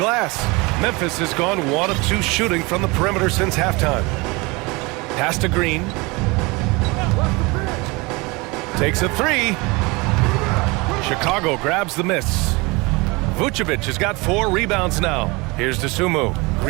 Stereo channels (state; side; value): quieter; left; 25.6 dB